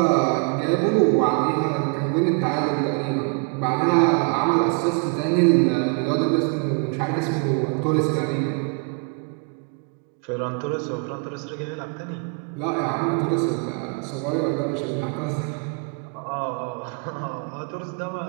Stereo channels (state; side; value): quieter; left; 37.0 dB